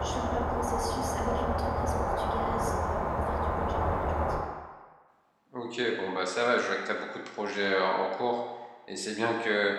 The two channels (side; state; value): both; identical; correlation 1.00